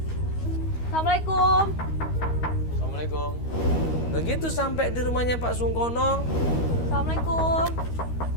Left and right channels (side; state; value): right; late; 13 ms